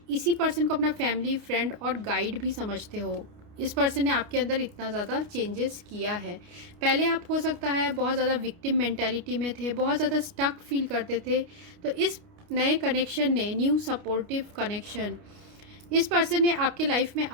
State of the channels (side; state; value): left; late; 29 ms